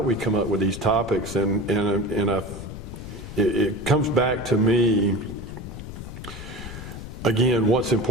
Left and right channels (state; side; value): noise; left; rumble, 10 dB below the sound